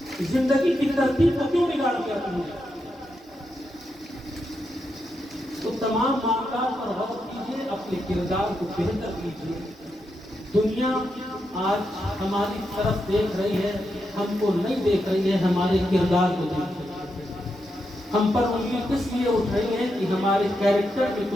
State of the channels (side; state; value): both; normal; correlation 0.84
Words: زندگی کی ترتیب کو کیوں بگاڑ دیا تم نے؟ تو تمام معاملات پر غور کیجیے، اپنے کردار کو بہتر کیجیے. دنیا آج ہماری طرف دیکھ رہی ہے، ہم کو نہیں دیکھ رہی ہے، ہمارے کردار کو دیکھ رہی ہے. ہم پر انگلی کس لیے اٹھ رہی ہے کہ ہمارے کیریکٹر میں